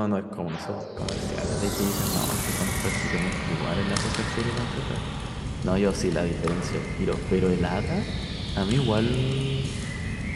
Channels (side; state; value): both; identical; correlation 1.00